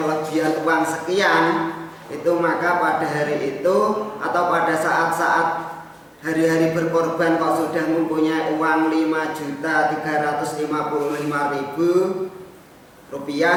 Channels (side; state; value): both; identical; correlation 1.00